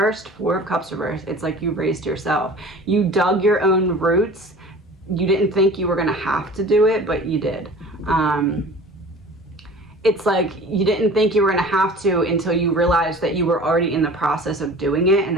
4 of Cups reversed. It's like you raised yourself. You dug your own roots. You didn't think you were going to have to do it, but you did. It's like you didn't think you were going to have to until you realized that you were already in the process of doing it. And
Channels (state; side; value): normal; both; correlation 0.42